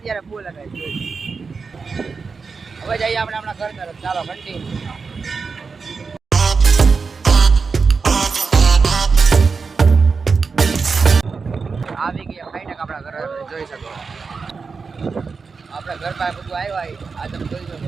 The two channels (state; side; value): quieter; left; 4.9 dB